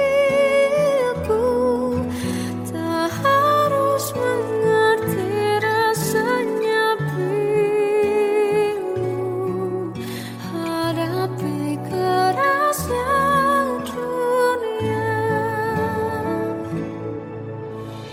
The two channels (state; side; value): identical; both; correlation 1.00